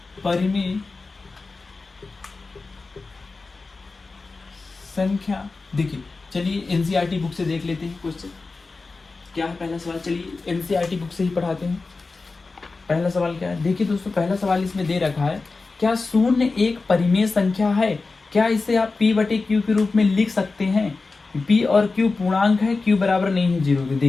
परिमेय संख्या। देखिए चलिए एनसीईआरटी बुक से देख लेते हैं क्वेश्चन क्या है। पहला सवाल चलिए एनसीईआरटी बुक से ही पढ़ाते हैं। पहला सवाल क्या है, देखिए दोस्तों पहला सवाल इसमें दे रखा है, क्या शून्य एक परिमेय संख्या है? क्या इसे आप p बटे q के रूप में लिख सकते हैं? p और q पूर्णांक है, q बराबर नहीं है 0 के।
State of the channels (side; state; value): right; quieter; 3.9 dB